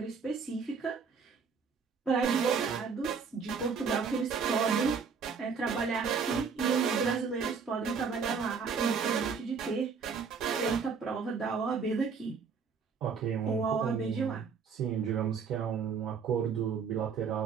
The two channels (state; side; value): quieter; left; 5.7 dB